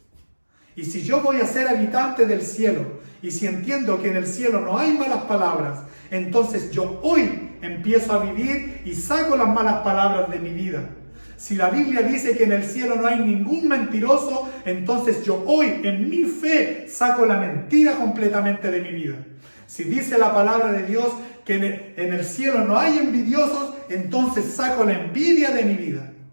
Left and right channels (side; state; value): both; inverted; correlation -1.00